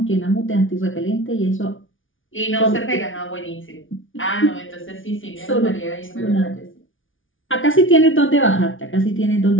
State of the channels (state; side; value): late; right; 0.57 ms